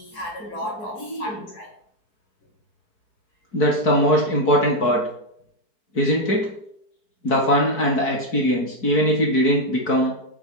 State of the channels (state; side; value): late; right; 4.6 ms